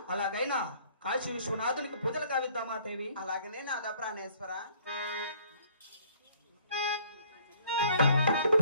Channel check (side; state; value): both; inverted; correlation -0.59